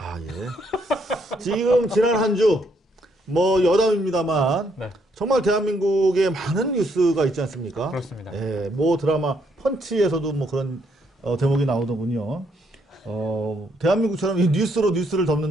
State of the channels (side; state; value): both; normal; correlation 0.72